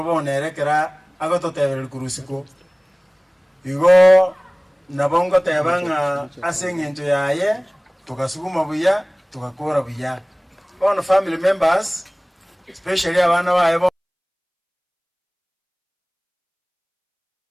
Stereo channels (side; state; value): both; identical; correlation 1.00